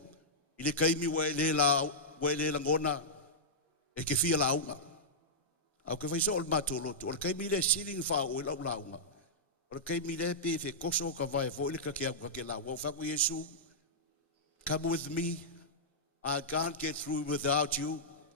I le kaimi wa le langona e ke fia launga. Au ke faiso o le matolo tu. O le kaimi le siling fa o le launga. O le kaimi le pe fe koso ka vai fo le ka ke launga. O fa ku Yesu. Come with me. I can't get through without you.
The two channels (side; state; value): both; normal; correlation -0.11